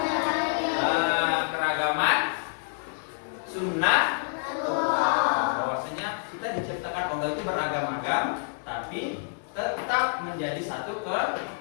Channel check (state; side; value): silent; right; digital silence